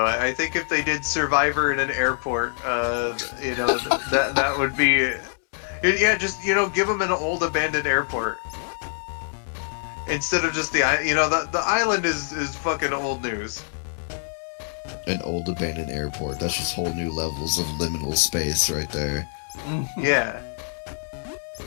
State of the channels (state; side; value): silent; right; 62 dB below the other